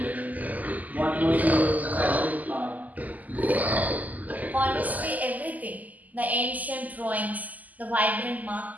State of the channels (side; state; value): left; late; 0.079 ms